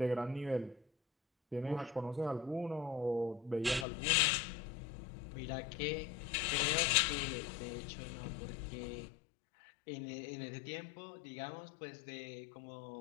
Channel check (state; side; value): drops out; right; at 3.9 s